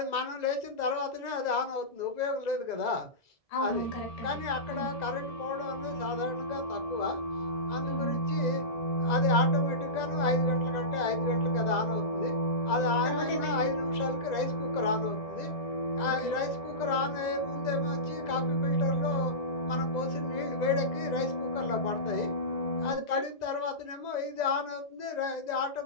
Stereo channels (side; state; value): right; late; 2.0 ms